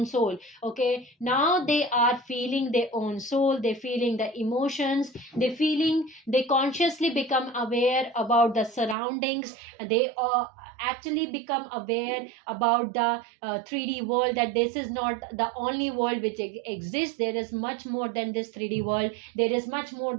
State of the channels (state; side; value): drops out; left; at 9.0 s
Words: soul. Okay, now they are feeling their own soul, they feeling the emotions, they feeling, they consciously become aware about the surroundings. They actually become aware about the 3D world, that this is not the only world which exists. There is much more than this 3D world, there is much more